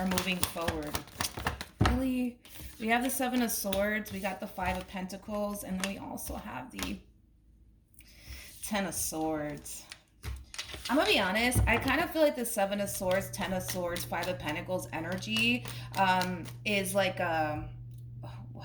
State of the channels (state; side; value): identical; both; correlation 1.00